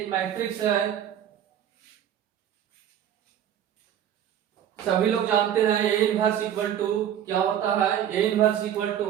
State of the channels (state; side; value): quieter; left; 10.1 dB